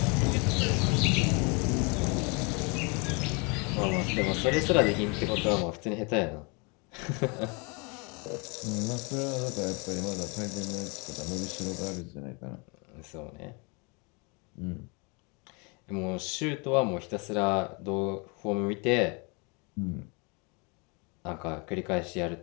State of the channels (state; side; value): quieter; right; 31.5 dB